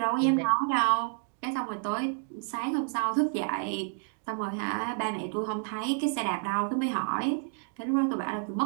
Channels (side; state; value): left; silent; 58 dB below the other